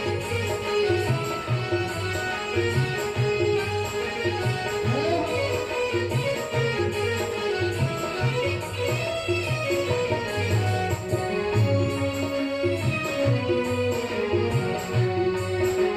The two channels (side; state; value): both; identical; correlation 1.00